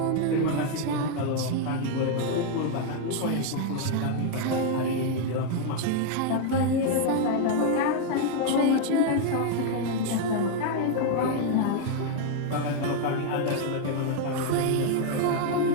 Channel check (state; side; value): different; both; correlation 0.00